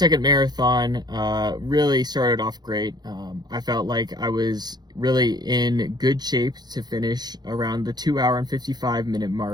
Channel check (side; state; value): left; late; 0.20 ms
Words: marathon really started off great. I felt like I was really in good shape to finish around the 2 hour and 55 minute